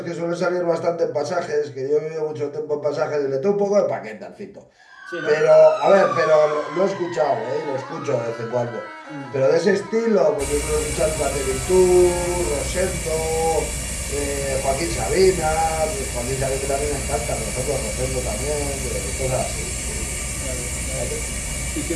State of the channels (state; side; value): identical; both; correlation 1.00